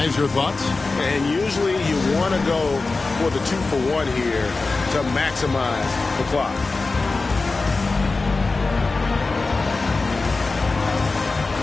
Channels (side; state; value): right; quieter; 3.7 dB